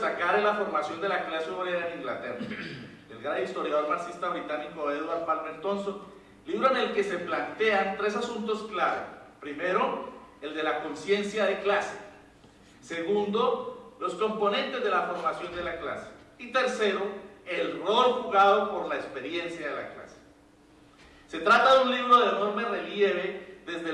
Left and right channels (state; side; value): identical; both; correlation 1.00